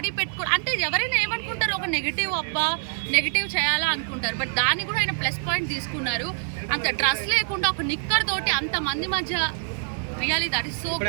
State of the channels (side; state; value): left; silent; 58 dB below the other